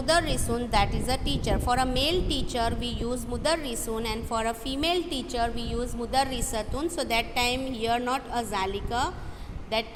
that is a teacher. For a male teacher we use mudarrisun, and for a female teacher we use mudarrisatun. So that time here not a zalika, that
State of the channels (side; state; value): both; identical; correlation 1.00